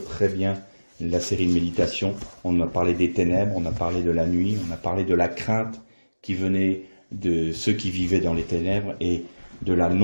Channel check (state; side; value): inverted; both; correlation -1.00